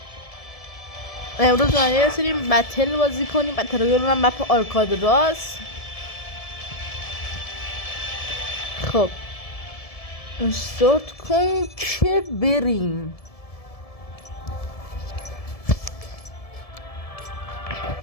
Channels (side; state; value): right; late; 1.7 ms